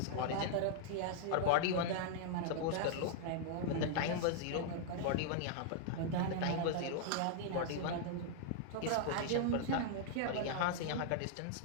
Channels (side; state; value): both; different; correlation -0.01